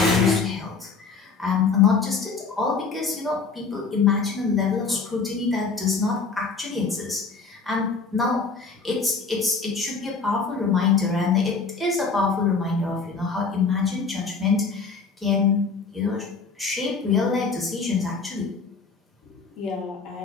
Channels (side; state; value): right; quieter; 4.7 dB